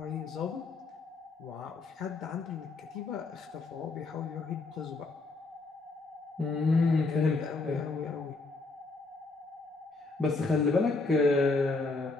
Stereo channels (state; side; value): quieter; right; 3.7 dB